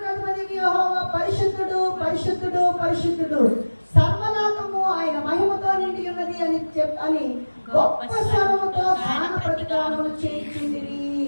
అధిపతి యెహోవా పరిశుద్ధుడు పరిశుద్ధుడు పరిశుద్ధుడు, సర్వలోకము ఆయన మహిమతో నిండి ఉన్నది అని గొప్ప స్వరముతో గాన ప్రతిగానములు చేయుచుండిరి.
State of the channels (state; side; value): inverted; both; correlation -1.00